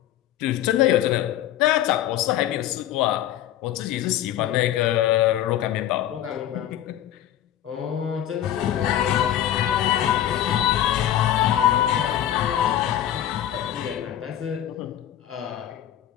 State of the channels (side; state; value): right; quieter; 11.8 dB